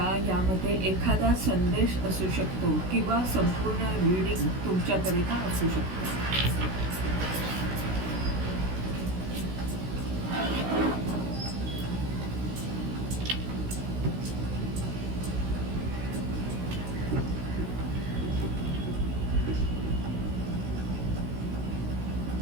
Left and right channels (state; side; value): late; left; 16 ms